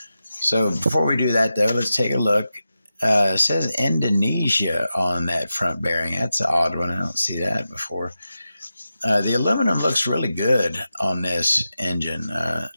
So before we do that, though, let's take a look. It says Indonesia on that front bearing. That's an odd one. I don't see that before. The aluminum looks really good on this engine.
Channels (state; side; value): inverted; both; correlation -0.91